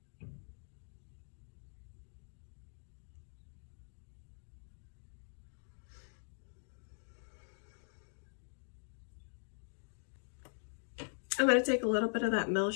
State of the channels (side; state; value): right; silent; digital silence